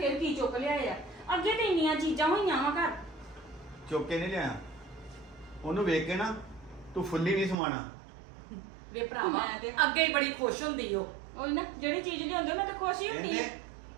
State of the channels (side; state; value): left; drops out; at 7.6 s